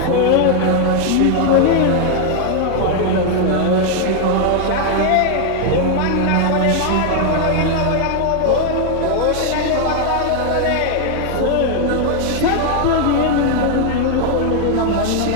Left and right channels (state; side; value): different; both; correlation 0.00